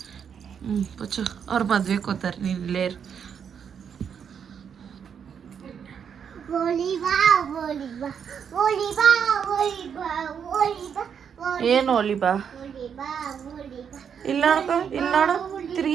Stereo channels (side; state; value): left; quieter; 7.5 dB